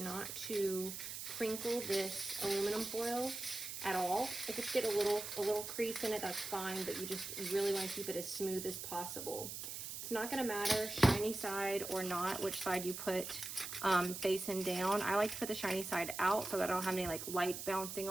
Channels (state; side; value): noise; right; hiss, 7 dB below the sound